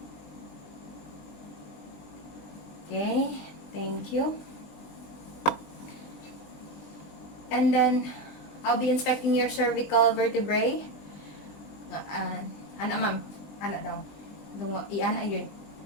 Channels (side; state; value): right; late; 20 ms